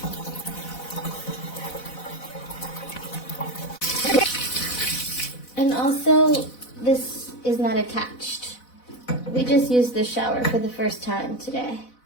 And also, this is not attached. We just used the shower for the first time today.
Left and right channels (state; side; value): late; right; 4.0 ms